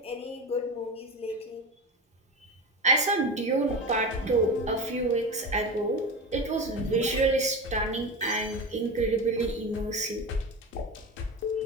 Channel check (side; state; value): both; normal; correlation 0.25